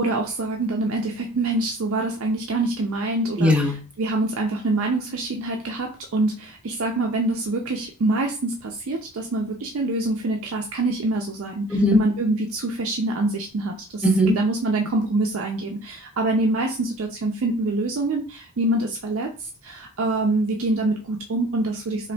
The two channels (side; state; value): both; normal; correlation 0.48